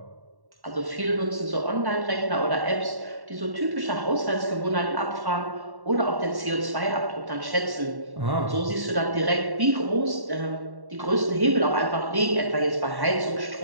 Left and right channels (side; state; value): left; late; 1.1 ms